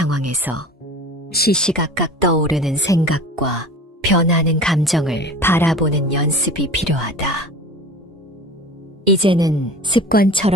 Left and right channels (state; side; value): normal; both; correlation 0.38